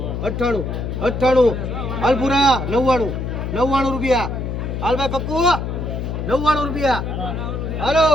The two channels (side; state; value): left; noise; hum, 4 dB below the sound